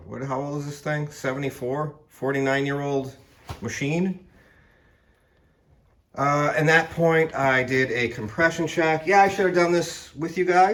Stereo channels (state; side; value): identical; both; correlation 1.00